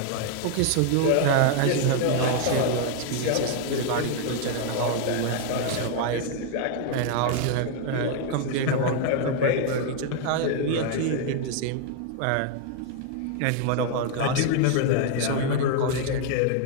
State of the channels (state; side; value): different; both; correlation 0.00